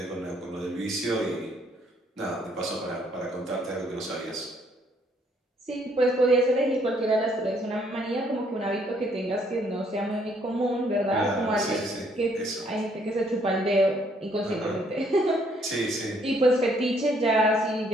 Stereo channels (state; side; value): normal; both; correlation 0.67